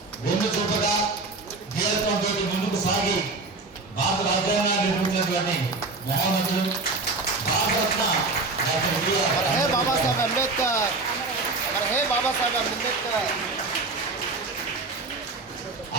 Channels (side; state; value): left; quieter; 3.6 dB